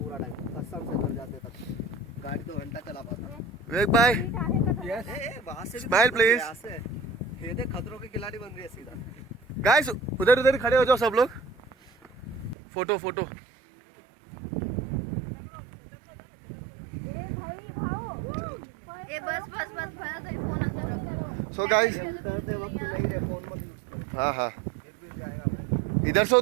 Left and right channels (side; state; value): left; drops out; at 12.6 s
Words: टाइम कसम से घर जाते तक गाड़ी 2 घंटा चला पाता। विवेक भाई यस वहां से स्माइल प्लीज। ये देख खतरों के खिलाड़ी बन रही है सीधा। गाइस उधर उधर खड़े हो जाओ सब लोग, फोटो फोटो। ए बस बस बस भैया तेरी फोन अंदर सो गाइस हाँ हाँ इधर से